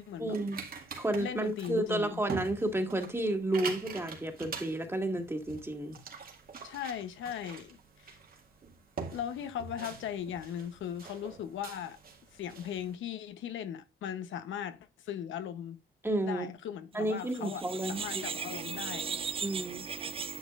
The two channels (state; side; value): normal; both; correlation 0.59